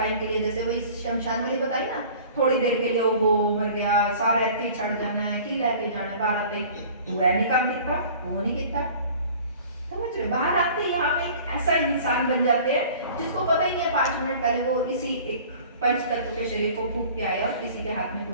के लिए, जैसे वही शमशान वाली बताई ना, थोड़ी देर के लिए वो मर गया, सारा ऐसे छड़ जाना है, की लेके जाना है, बाहर आते पूरा नहीं काम कितना, वो नहीं कितना, समझ रहे? बाहर आते ही यहाँ पे एक ऐसा इंसान बन जाते हैं जिसको पता ही नहीं है 5 मिनट पहले वो इसी एक पंच तत्व के शरीर को फूंक के आया और किसी के हाथ में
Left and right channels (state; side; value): inverted; both; correlation -0.46